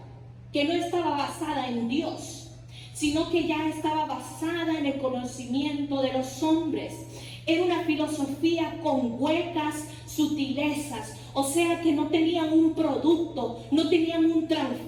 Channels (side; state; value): both; identical; correlation 1.00